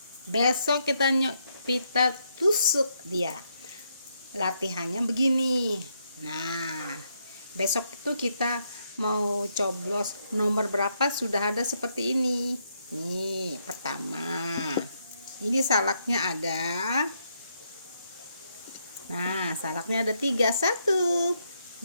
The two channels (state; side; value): inverted; both; correlation -0.77